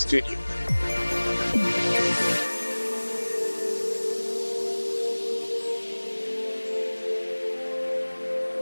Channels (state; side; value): inverted; both; correlation -1.00